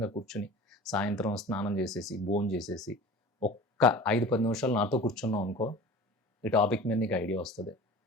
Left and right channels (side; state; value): both; normal; correlation 0.39